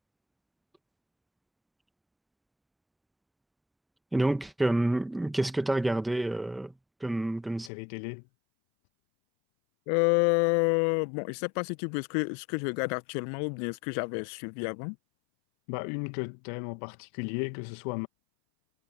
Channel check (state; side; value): drops out; right; at 7.7 s